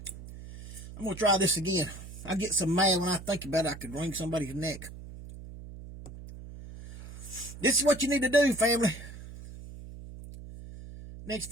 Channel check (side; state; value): right; noise; hum, 14 dB below the sound